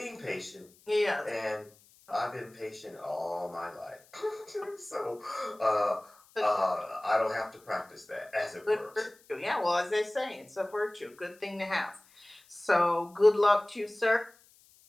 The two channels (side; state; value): left; noise; hiss, 28 dB below the sound